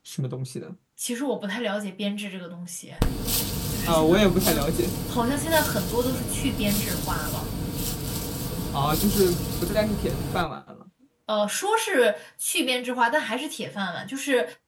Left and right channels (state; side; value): identical; both; correlation 1.00